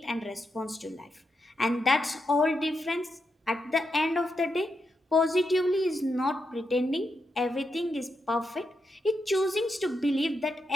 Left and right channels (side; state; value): both; normal; correlation 0.84